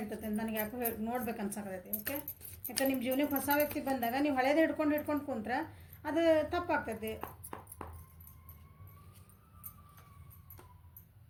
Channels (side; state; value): both; identical; correlation 1.00